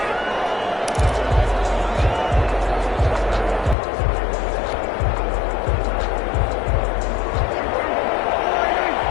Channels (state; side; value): drops out; right; at 3.8 s